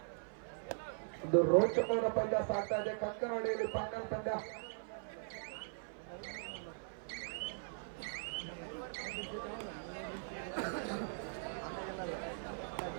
ಒಂದು ರೋಚಕವಾದ ಪಂದ್ಯ ಸಾಗ್ತಾ ಇದೆ ಕಂಕನಹಳ್ಳಿಯಲ್ಲಿ ಫೈನಲ್ ಪಂದ್ಯ.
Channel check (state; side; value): silent; left; 51 dB below the other